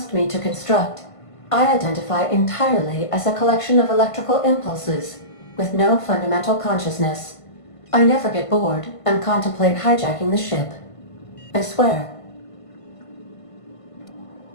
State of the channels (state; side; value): late; right; 1.5 ms